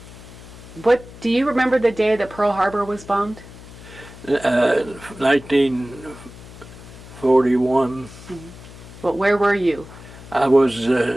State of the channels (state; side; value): noise; left; hum, 17 dB below the sound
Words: Do you remember the day that Pearl Harbor was bombed? 1941. Mm-hmm. Well, where were you? I was